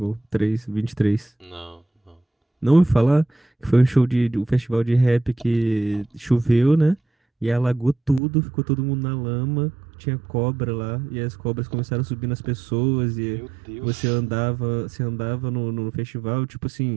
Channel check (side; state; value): left; drops out; at 8.2 s